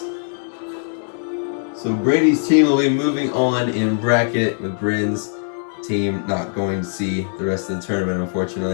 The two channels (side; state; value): right; silent; 64 dB below the other